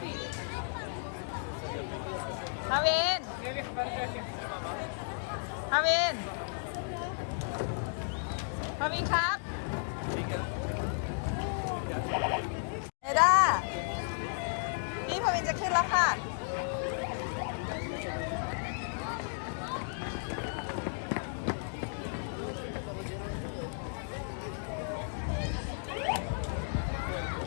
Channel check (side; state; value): right; silent; digital silence